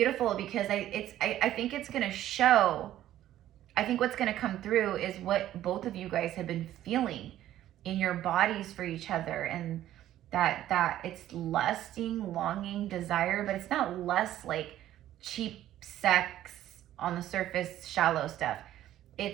because I think it's going to show, I think what's going to come through is what both of you guys have been feeling in your bodies for each other, and that it's lusting, longing, desire, but it's not lust like cheap sex on the surface, shallow stuff.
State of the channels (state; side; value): quieter; left; 12.9 dB